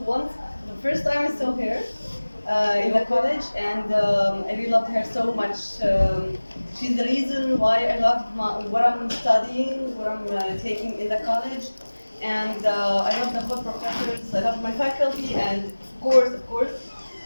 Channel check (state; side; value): inverted; both; correlation -1.00